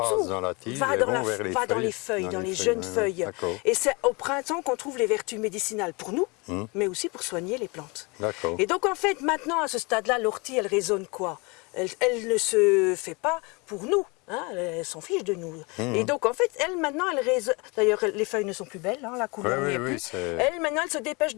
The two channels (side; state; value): right; quieter; 28.5 dB